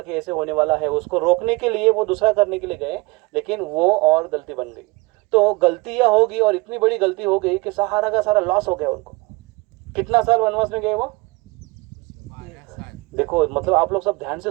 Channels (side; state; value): left; quieter; 25.1 dB